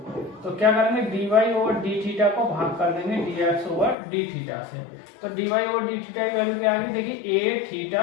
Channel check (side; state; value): right; drops out; at 4.0 s